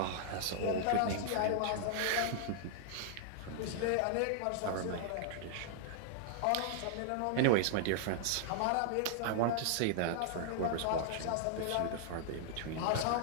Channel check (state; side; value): different; both; correlation -0.01